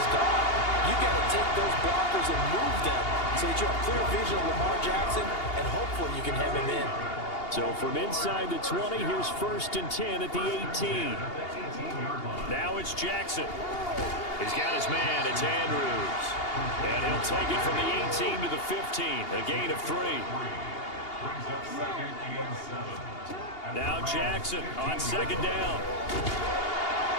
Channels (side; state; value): right; late; 2.8 ms